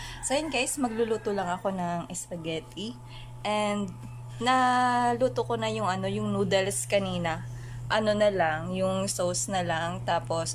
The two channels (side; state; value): both; identical; correlation 1.00